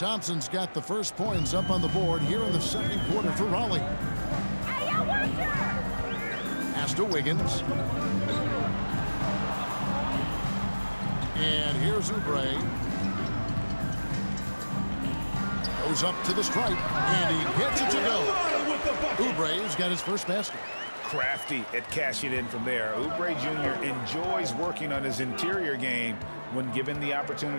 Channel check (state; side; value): inverted; both; correlation -1.00